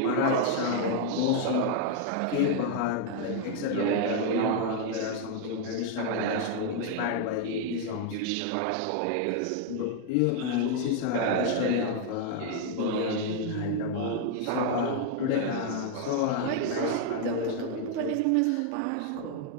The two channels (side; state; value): both; different; correlation 0.00